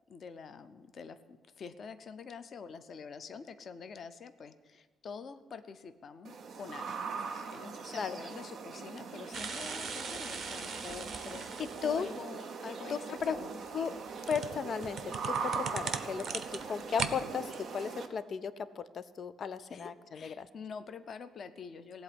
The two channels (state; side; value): normal; both; correlation 0.69